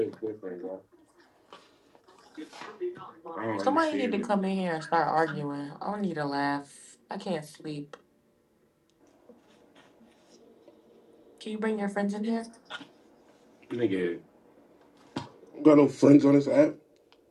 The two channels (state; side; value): identical; both; correlation 1.00